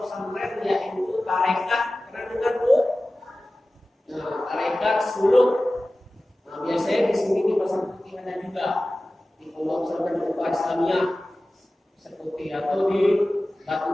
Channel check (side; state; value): both; normal; correlation 0.96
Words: pesantren yaitu tarekat. Pernah dengar Bu? Nah, tarekat suluk. Nah, biasanya di sini di Pasar Putih ada juga di pondok pesantren Ukhuwah Islamiyah seperti atau di Batu